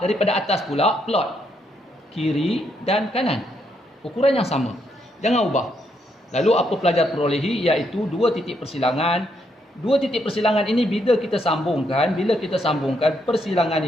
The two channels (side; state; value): both; normal; correlation 0.76